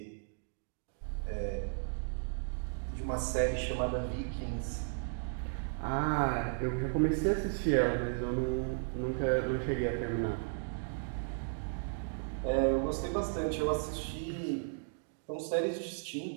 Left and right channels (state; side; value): silent; left; digital silence